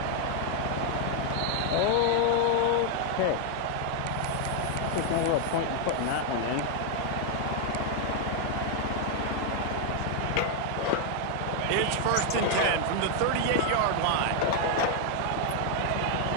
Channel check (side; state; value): both; different; correlation 0.00